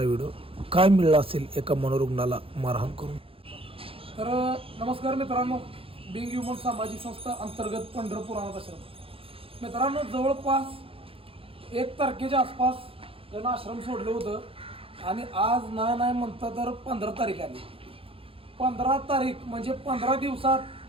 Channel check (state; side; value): late; left; 0.27 ms